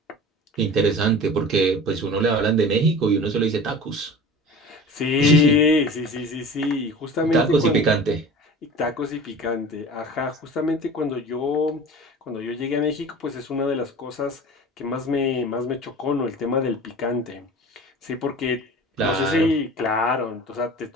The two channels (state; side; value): normal; both; correlation 0.38